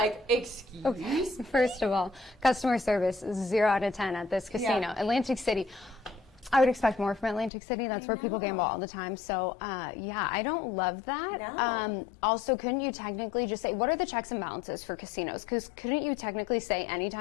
excuse me. Okay. First of all, customer service, 0 out of 10 at this casino. Yeah. Atlantic City. I would expect more from Atlantic City. That's where people gamble all the time. So, yeah, I don't love that. No. Also, couldn't you technically just say, what are the checks and balances for casinos? Because couldn't you technically say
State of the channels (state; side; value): drops out; right; at 7.5 s